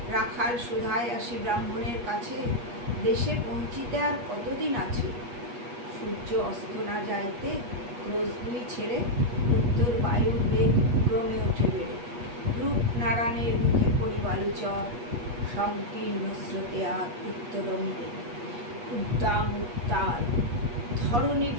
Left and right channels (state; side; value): late; left; 8.4 ms